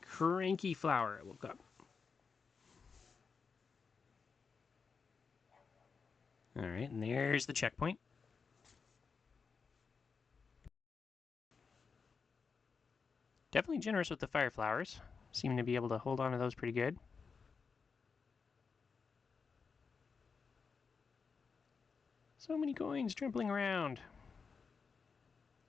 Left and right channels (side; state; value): right; quieter; 5.3 dB